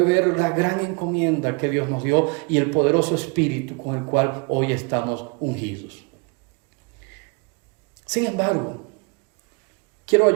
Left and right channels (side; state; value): left; quieter; 31.0 dB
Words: ver la gran encomienda que Dios nos dio y el poderoso espíritu con el cual hoy estamos ungidos. Sin embargo, quiero